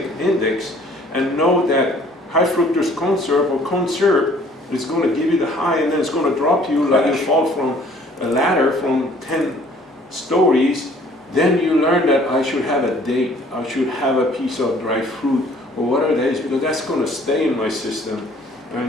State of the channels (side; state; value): both; normal; correlation 0.56